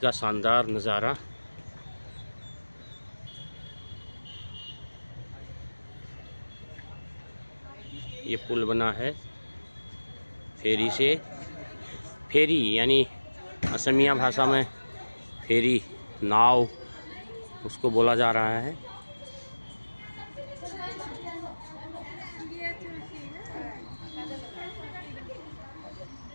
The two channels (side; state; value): both; inverted; correlation -1.00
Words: शानदार नज़ारा। ये पुल बना है फेरी से। फेरी यानी असमिया भाषा में फेरी, नाव उसको बोला जा रहा है।